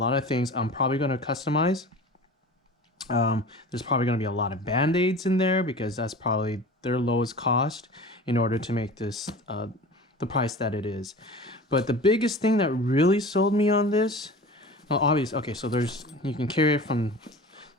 of things I'm probably going to customize. There's probably going to be a lot of band-aids in there because that's probably their lowest cost in order to make this the price that it is. But the biggest thing that really sold me on this, well, obviously, okay, so you can carry it from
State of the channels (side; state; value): both; normal; correlation 0.38